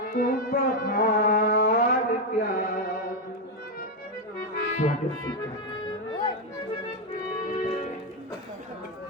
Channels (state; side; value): normal; both; correlation 0.05